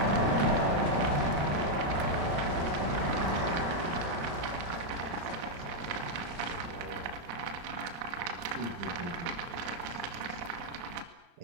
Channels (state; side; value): late; left; 35 ms